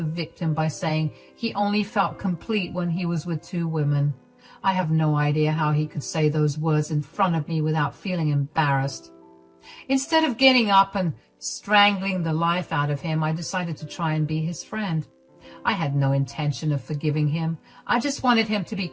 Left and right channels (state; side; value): identical; both; correlation 1.00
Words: victim by saying he only felt complete when he was with 2 women. I have no idea how he could say those words in front of me without feeling embarrassed. Instead of getting up and strangling the life out of him, I decided to try and be his friend. I had no intention of forgiving him. I just wanted him to be